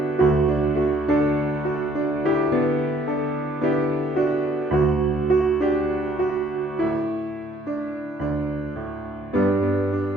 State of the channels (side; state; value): both; normal; correlation 0.62